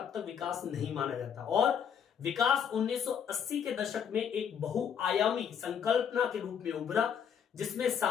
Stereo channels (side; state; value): right; quieter; 7.9 dB